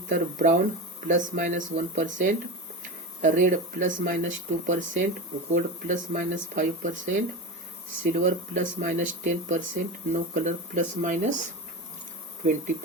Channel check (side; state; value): both; normal; correlation 0.24